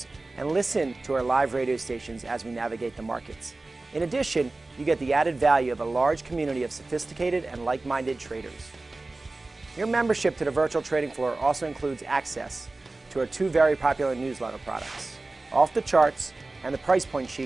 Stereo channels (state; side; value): quieter; left; 3.2 dB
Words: and listen to our live radio stations as we navigate the markets. In addition, you get the added value of a large community of sophisticated and like-minded traders. Your membership to the virtual trading floor also includes access to our 2 very popular newsletter products, Off the Charts and the Price Point